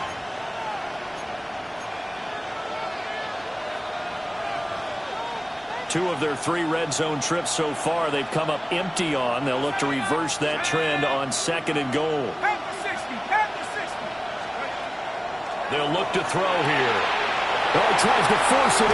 Two of their 3 red zone trips so far, they've come up empty on. They'll look to reverse that trend on 2nd and goal. They'll look to throw here. Oh, he tries to force it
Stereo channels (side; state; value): both; identical; correlation 1.00